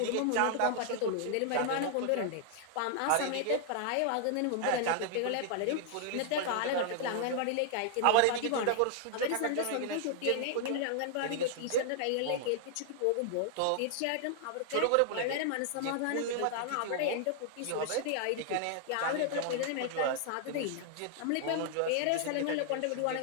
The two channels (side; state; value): both; different; correlation 0.00